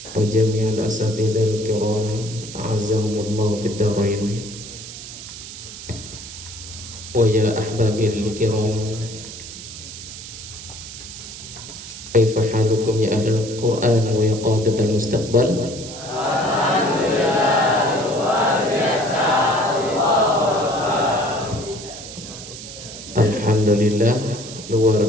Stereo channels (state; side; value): noise; right; hiss, 12 dB below the sound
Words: وجميع الأساتذة الكرام أعزهم الله في الدارين. ويا أحبابي الكرام، كيف حالكم يا أهل القرآن ويا قادة المستقبل؟ Alhamdulillah, luar